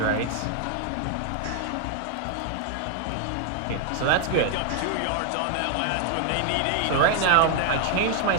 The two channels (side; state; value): both; different; correlation 0.00